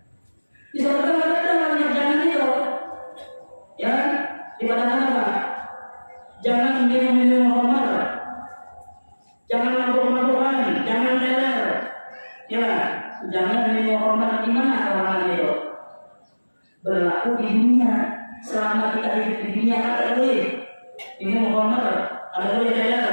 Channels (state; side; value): inverted; both; correlation -1.00